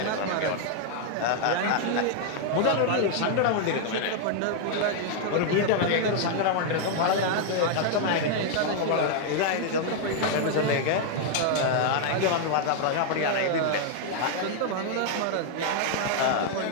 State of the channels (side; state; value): both; different; correlation 0.00